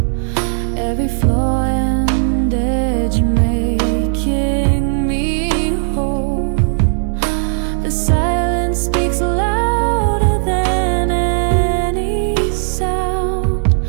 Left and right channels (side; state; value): left; silent; 69 dB below the other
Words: Every flaw and edge making me whole. The silence speaks louder than any sound.